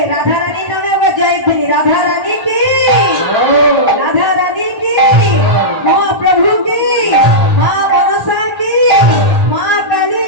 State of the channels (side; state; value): left; late; 1.0 ms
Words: রাধা রানীর নামে আবার জয়ধ্বনি। রাধা রানী কি, রাধা রানী কি, মহাপ্রভু কি, মা মনসা কি, মা কালী